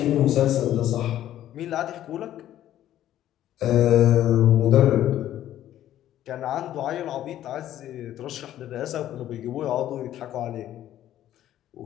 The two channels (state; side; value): quieter; right; 12.3 dB